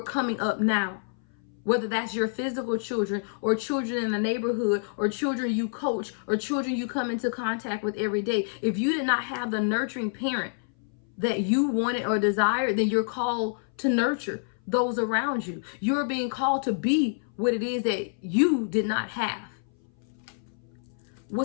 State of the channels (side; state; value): right; silent; 58 dB below the other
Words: coming up now. Whether that's your physical children, or children in the neighborhood, or children you coach, or children you come into contact with every day. If you did not have the nurturing parent that you wanted or desired, then you're called to nurture those around you. You're being called to be what it is that you did not have.